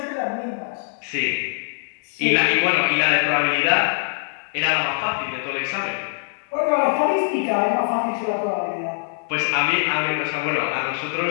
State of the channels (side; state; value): right; silent; digital silence